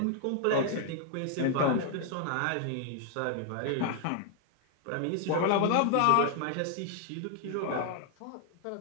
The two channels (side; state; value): both; different; correlation 0.00